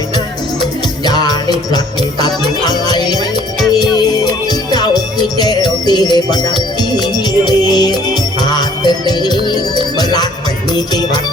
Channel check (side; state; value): both; normal; correlation 0.58